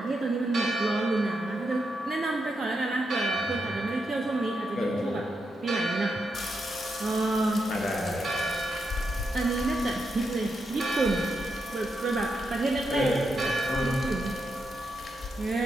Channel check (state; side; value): normal; both; correlation 0.84